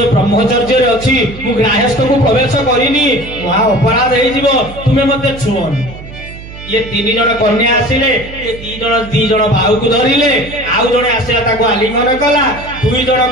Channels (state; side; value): noise; right; hum, 14 dB below the sound